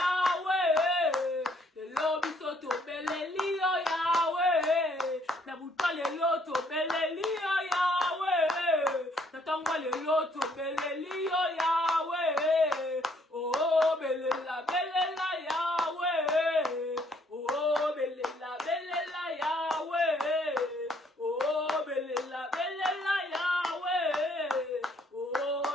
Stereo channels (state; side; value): normal; both; correlation 0.66